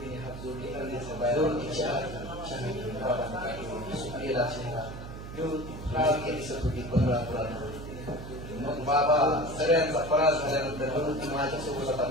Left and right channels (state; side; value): noise; right; hum, 10 dB below the sound